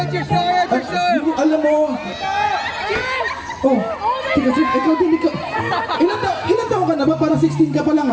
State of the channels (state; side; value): identical; both; correlation 1.00